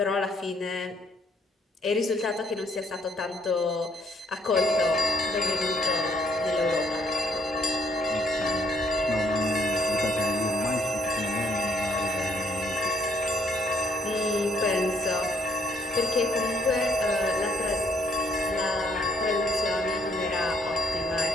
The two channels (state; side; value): normal; both; correlation 0.68